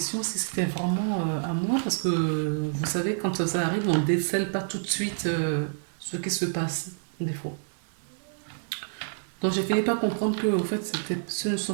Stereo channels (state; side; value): silent; left; digital silence